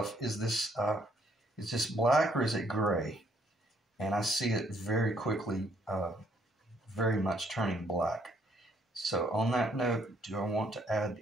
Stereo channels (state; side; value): normal; both; correlation 0.68